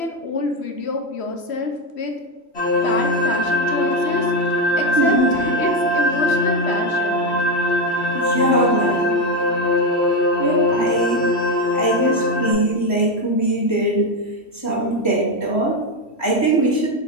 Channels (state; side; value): late; right; 3.1 ms